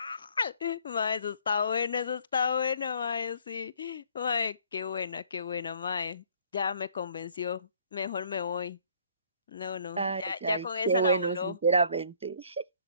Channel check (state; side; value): inverted; both; correlation -0.60